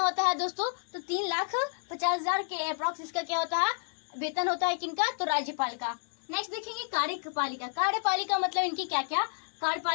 होता है दोस्तों? तो 3,50,000 के अप्रॉक्स इसका क्या होता है? वेतन होता है। किनका? तो राज्यपाल का। नेक्स्ट देखेंगे कार्यपालिका। कार्यपालिका मतलब इनकी क्या क्या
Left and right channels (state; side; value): silent; right; digital silence